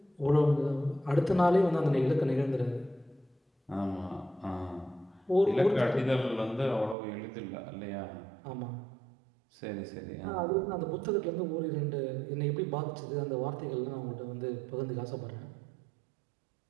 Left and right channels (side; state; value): left; drops out; at 7.0 s